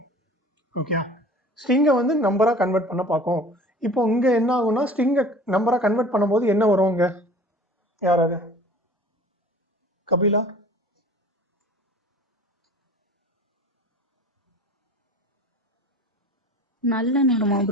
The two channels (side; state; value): both; normal; correlation 0.44